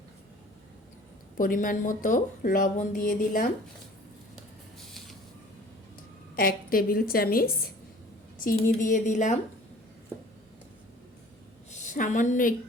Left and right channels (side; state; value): both; normal; correlation 0.48